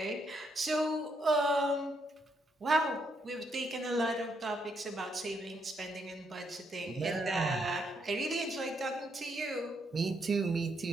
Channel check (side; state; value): both; normal; correlation 0.76